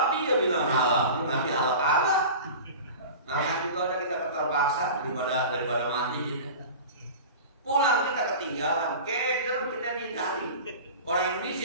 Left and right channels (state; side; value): inverted; both; correlation -0.35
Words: dia bilang halal, nanti halal kalah. Makan juga udah kita terpaksa daripada mati gitu. Pulang kita ketinggalan, keder kita di Itali. Orang